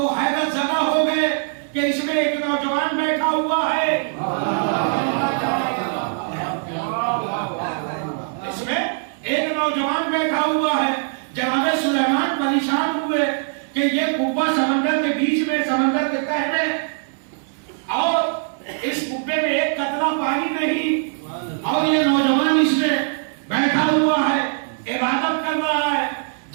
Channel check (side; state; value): left; silent; digital silence